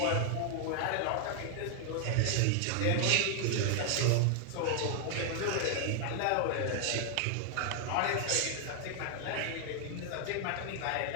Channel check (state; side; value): different; both; correlation 0.00